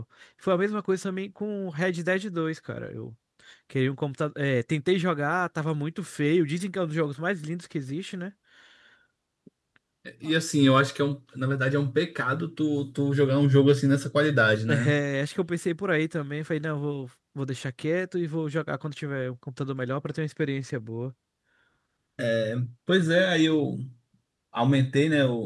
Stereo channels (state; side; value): identical; both; correlation 1.00